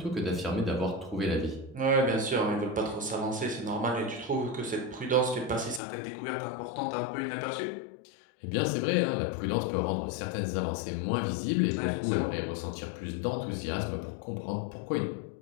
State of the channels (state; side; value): drops out; right; at 5.8 s